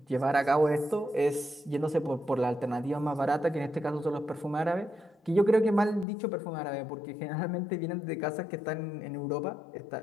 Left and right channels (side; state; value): right; drops out; at 6.1 s